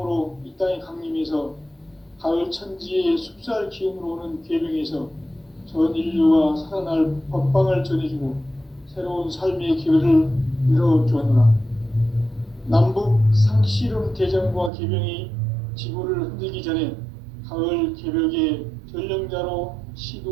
이 땅에 강림해서 가을 천지의 숲살 기운으로 오는 계명에서 전 인류가 살아날 법방을 전해주고 새로운 삶의 기회를 이뤄주었노라. 남북 상씨름 대전과 계명이 지구를 흔들기 전에 가을 개벽의 전령자로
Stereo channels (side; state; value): left; drops out; at 14.7 s